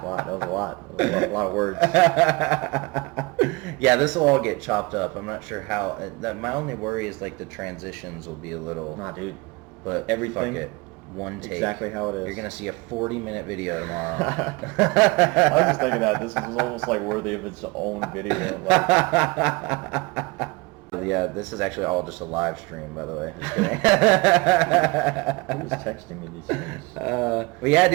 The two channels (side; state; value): left; quieter; 24.7 dB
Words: was a lot of words. Yeah, this will all get chopped up. I'm not sure how. My only worry is like the transitions will be a little... Nah, dude. But everything, fuck it. One take. Exactly how it is. You're going to see a 40-minute video tomorrow. I was just thinking that this is almost like worthy of its own video. Yeah, this is actually all just a live stream, by the way. Just kidding. Who was texting me these things? But yeah,